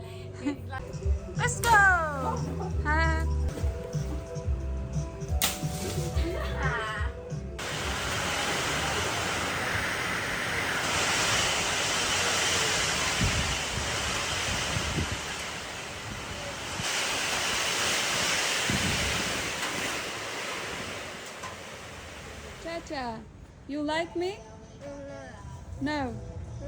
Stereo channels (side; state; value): both; identical; correlation 1.00